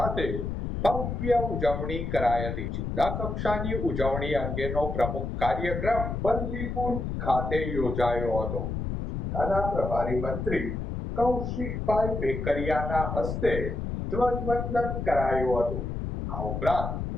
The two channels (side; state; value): left; noise; rumble, 4 dB below the sound